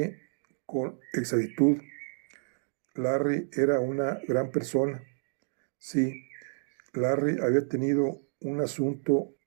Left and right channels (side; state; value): left; silent; 55 dB below the other